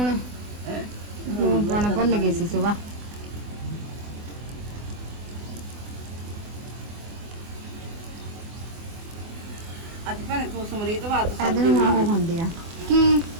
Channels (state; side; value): late; left; 24 ms